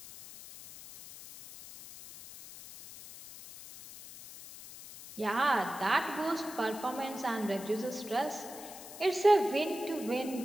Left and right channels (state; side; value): noise; left; hiss, 15 dB below the sound